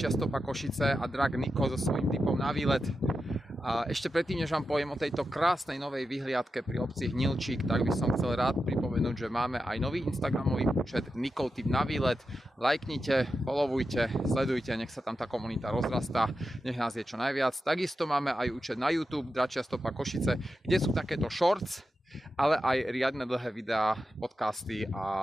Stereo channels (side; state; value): both; normal; correlation 0.90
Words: stopa Košice a drag Niko so svojím typom na výlet. A ešte predtým, než vám poviem o tejto krásnej novej vyhliadke pri obci Hnilčík, tak by som chcel rád pripomenúť, že máme aj nový instagramový účet Nikov typ na výlet. Lajknite, followujte, sledujte, nech sa tam tá komunita rozrastá, nech nás je čo najviac. Takisto máme aj účet na YouTube Dračia stopa Košice, kde sú takéto shorts, ale aj riadne dlhé videá, podcasty